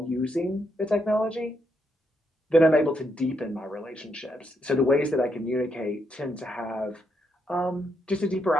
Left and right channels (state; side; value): normal; both; correlation 0.79